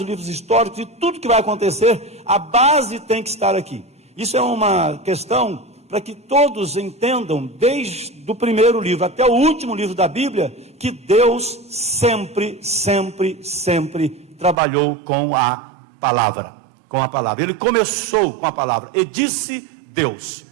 históricos, e tudo que vai acontecer, a base tem que estar aqui. Isso é uma questão para que todos entendam, desde o primeiro livro até o último livro da Bíblia, que Deus sempre trabalhou com a palavra. Ele começou com a palavra, e disse Deus,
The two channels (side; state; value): left; drops out; at 14.6 s